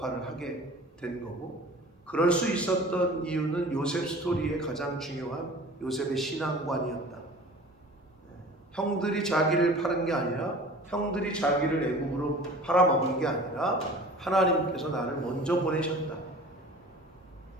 하게 된 거고 그럴 수 있었던 이유는 요셉 스토리의 가장 중요한 요셉의 신앙관이었다. 형들이 자기를 파는 게 아니라 형들이 자기를 애국으로 팔아먹은 게 아니라 하나님께서 나를 먼저 보내셨다.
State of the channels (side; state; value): both; normal; correlation 0.42